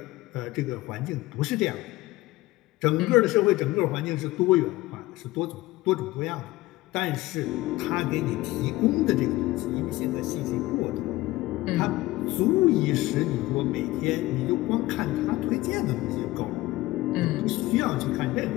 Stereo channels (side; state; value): right; quieter; 18.5 dB